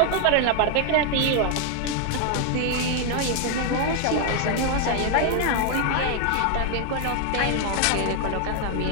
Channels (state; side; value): different; both; correlation 0.00